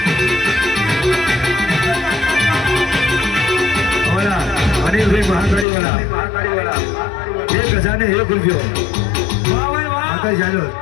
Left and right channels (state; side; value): drops out; right; at 5.7 s